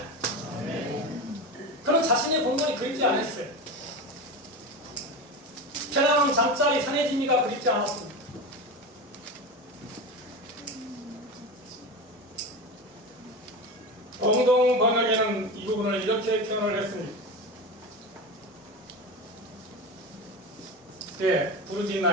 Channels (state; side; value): normal; both; correlation 0.24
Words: 그는 자신의 본분이 그립지 않았어요. 편안한 잠자리 산해지미가 그립지 않았습니다. 공동 번역에는 이 부분을 이렇게 표현을 했습니다. 예,